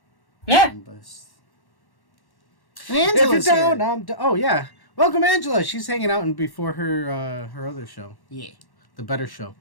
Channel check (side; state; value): right; late; 1.1 ms